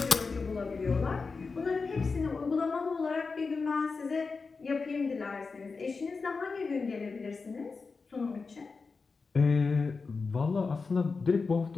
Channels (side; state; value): right; quieter; 4.5 dB